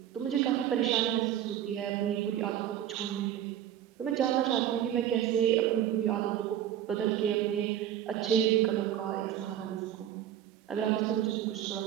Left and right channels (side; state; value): left; quieter; 11.0 dB